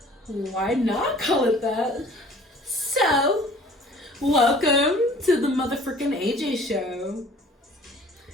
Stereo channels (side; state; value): both; normal; correlation 0.51